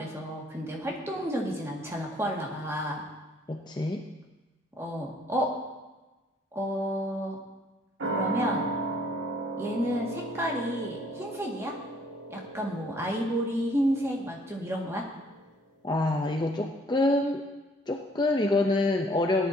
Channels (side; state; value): both; normal; correlation 0.61